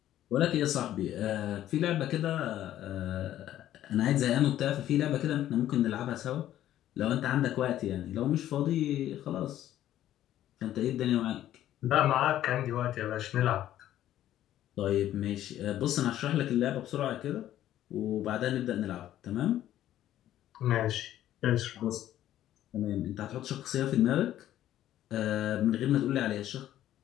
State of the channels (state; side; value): quieter; right; 12.5 dB